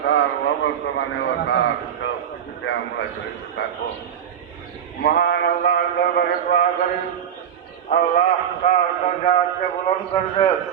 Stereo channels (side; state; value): left; quieter; 9.1 dB